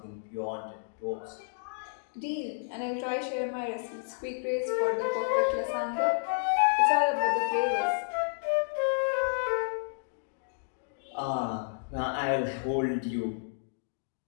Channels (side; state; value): right; silent; digital silence